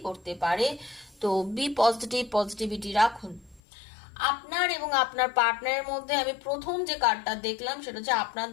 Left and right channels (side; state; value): right; drops out; at 3.6 s